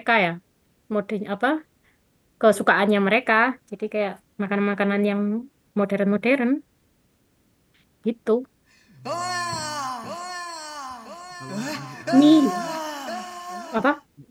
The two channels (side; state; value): both; identical; correlation 1.00